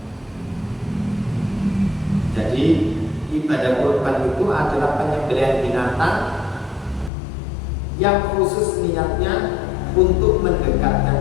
Jadi ibadah kurban itu adalah penyembelihan binatang yang khusus niatnya untuk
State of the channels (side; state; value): right; drops out; at 7.1 s